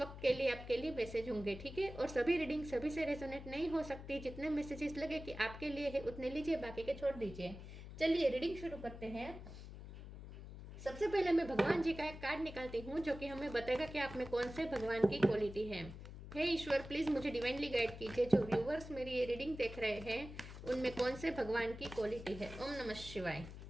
के लिए आपके लिए मैसेज होंगे, ठीक है। और सभी रीडिंग सभी से रेजोनेट नहीं हो सकती। जितने मैसेजेस लगे कि आपके लिए है उतने लीजिए, बाकी के छोड़ दीजिए। चलिए रीडिंग शुरू करते हैं। सबसे पहले मैं भगवान जी का एक कार्ड निकालती हूँ जो कि हमें बताएगा कि आप में कौन से भगवान की क्वालिटी है। हे ईश्वर, प्लीज मुझे डिवाइनली गाइड कीजिए। जो व्यूवर्स मेरी ये रीडिंग देख रहे हैं उनमें कौन से भगवान की क्वालिटी है। ओम नमः शिवाय।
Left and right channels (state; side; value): noise; left; hum, 12 dB below the sound